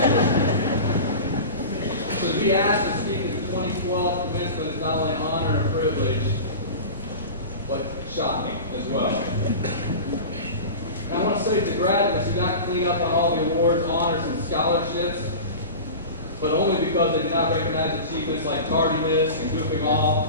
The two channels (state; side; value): inverted; both; correlation -0.32